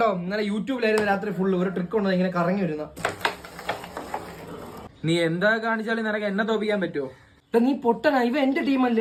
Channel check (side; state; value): both; identical; correlation 1.00